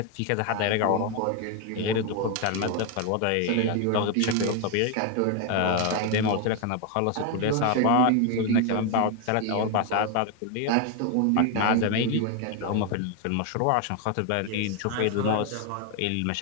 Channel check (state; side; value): different; both; correlation 0.01